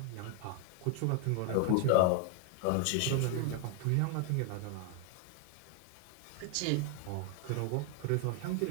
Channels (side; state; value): both; different; correlation 0.00